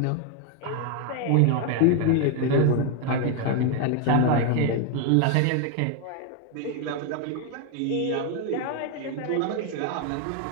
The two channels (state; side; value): different; both; correlation 0.01